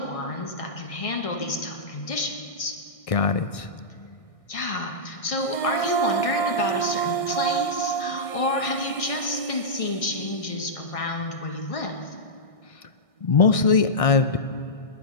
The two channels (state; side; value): late; right; 1.6 ms